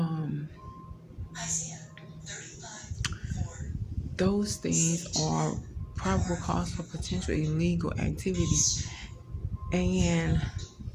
those things are probable cause for potential illegal activity and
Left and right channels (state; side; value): identical; both; correlation 1.00